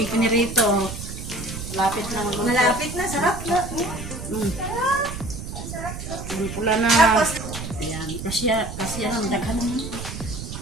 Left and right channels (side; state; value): right; noise; rumble, 8 dB below the sound